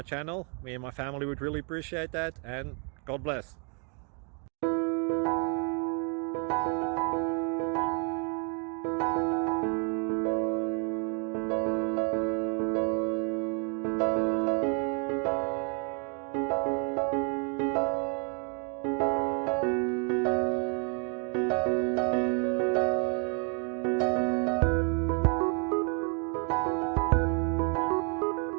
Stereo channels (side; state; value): left; quieter; 38.2 dB